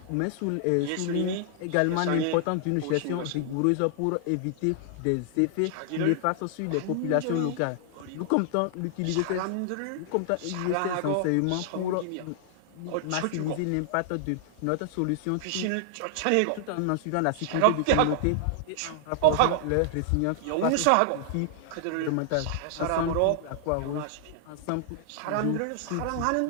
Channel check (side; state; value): both; different; correlation -0.01